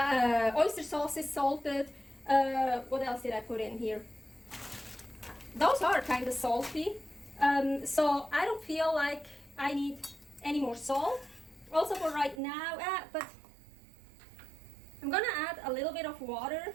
oyster sauce is salted. What else did I put in here? Those are kind of salty, so I don't feel like I need any more salt. Also for right now, but I'm gonna add a little bit of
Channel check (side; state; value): left; drops out; at 12.4 s